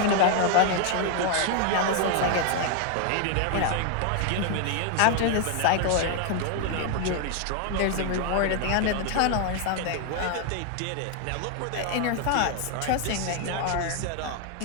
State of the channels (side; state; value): both; different; correlation 0.00